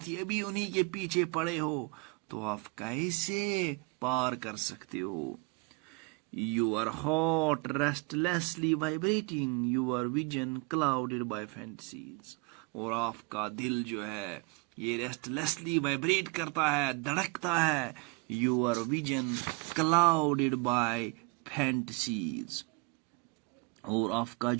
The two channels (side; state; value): left; quieter; 29.0 dB